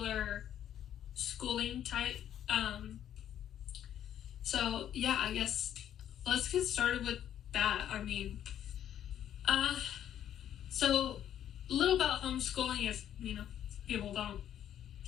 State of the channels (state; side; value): quieter; right; 10.5 dB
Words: schooling type. I guess let's get started with that. So a little about homeschooling if, people don't